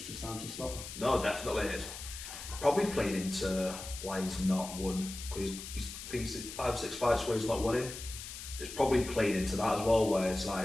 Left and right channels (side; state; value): left; noise; hiss, 10 dB below the sound